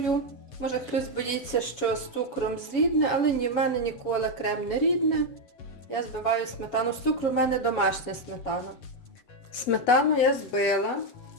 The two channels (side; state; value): right; late; 7.2 ms